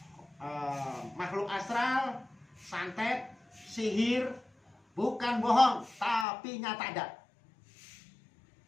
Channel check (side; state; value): right; drops out; at 6.2 s